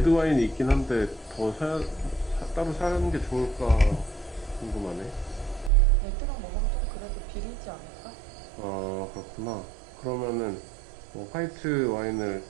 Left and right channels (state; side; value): drops out; left; at 5.7 s